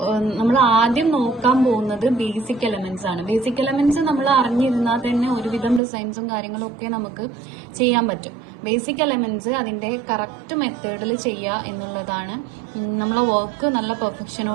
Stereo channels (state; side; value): drops out; left; at 5.8 s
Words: നമ്മൾ ആദ്യം നോക്കാൻ പോകുന്നത് ബേസിക് എലമെന്റ്സ് ആണ്. ബേസിക് എലമെന്റ്സ് നമ്മൾ അറിഞ്ഞിരുന്നാൽ തന്നെ ഒരുവിധം ഡിസൈൻസും കാര്യങ്ങളും ഒക്കെ നമുക്ക് ചെയ്യാൻ പറ്റും. ബേസിക് എലമെന്റ്സ് അതിന്റെ കറക്റ്റ് മെത്തേഡിൽ ചെയ്യുക എന്നുള്ളതാണ് നമ്മളെ വർക്ക് നല്ല